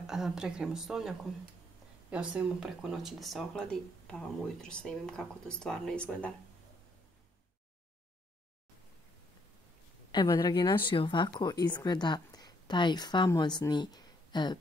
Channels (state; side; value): normal; both; correlation 0.70